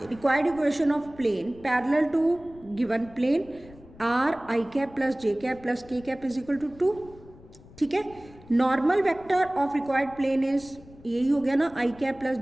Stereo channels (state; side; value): noise; left; rumble, 22 dB below the sound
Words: required equation of plane parallel to given plane r I cap plus j cap plus k cap is equal to 2, ठीक है। Normal vector of required plane is, यही हो गया ना, I cap plus